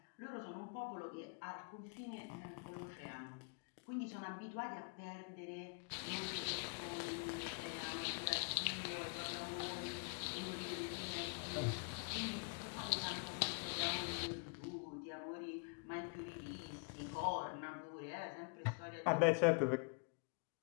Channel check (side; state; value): right; quieter; 38.9 dB